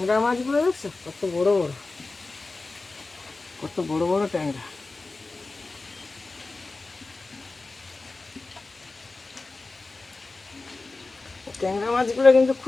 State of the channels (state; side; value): quieter; right; 3.5 dB